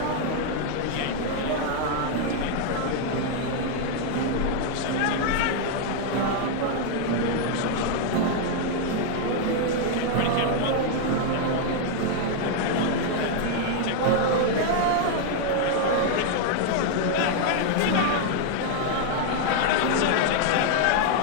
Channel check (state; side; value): different; both; correlation 0.00